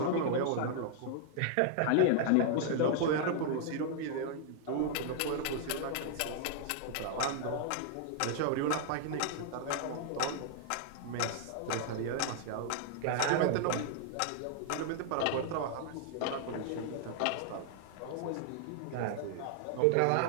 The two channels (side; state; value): both; different; correlation -0.01